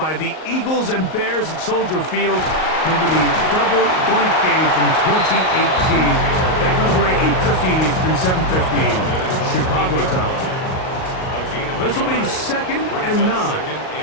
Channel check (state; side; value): late; right; 38 ms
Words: the Eagles and Bears at Soldier Field. Remember the double doink game from 2018. That comes right 8:15 Eastern, 7:15 Chicago time. This will be 2nd and 9.